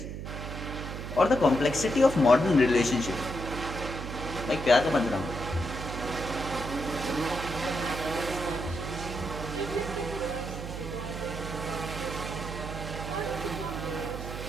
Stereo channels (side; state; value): right; noise; hum, 7 dB below the sound